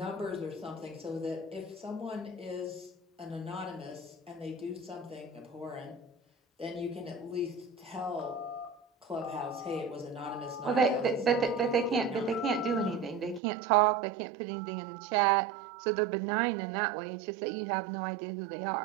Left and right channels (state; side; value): drops out; left; at 13.4 s